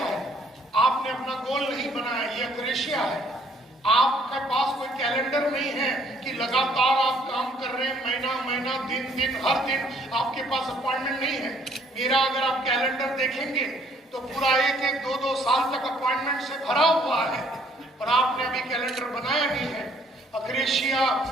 है, आपने अपना गोल नहीं बनाया, ये अक्रेशिया है। आपके पास कोई कैलेंडर नहीं है कि लगातार आप काम कर रहे हैं, महीना महीना, दिन दिन, हर दिन आपके पास अपॉइंटमेंट नहीं है। मेरा अगर आप कैलेंडर देखेंगे तो पूरा 1-1, 2-2 साल तक अपॉइंटमेंट से भरा हुआ है, और आपने अभी कैलेंडर बनाया नहीं है। अक्रेशिया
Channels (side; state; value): both; normal; correlation 0.63